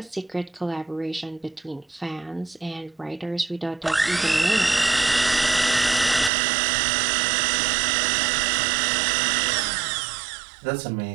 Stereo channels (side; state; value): left; drops out; at 6.3 s